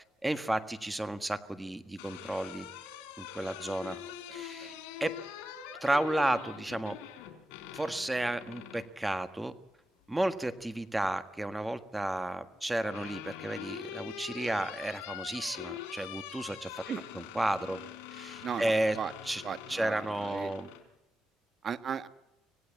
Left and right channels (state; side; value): normal; both; correlation 0.91